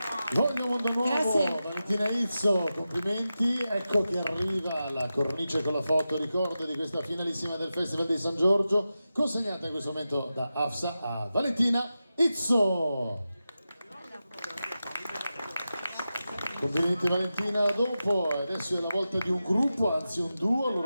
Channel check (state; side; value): inverted; both; correlation -0.92